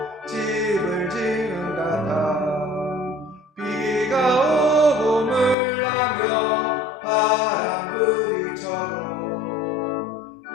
집을 지은 같아 비가 오고 물나며 바람 부딪혀도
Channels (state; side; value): drops out; right; at 5.6 s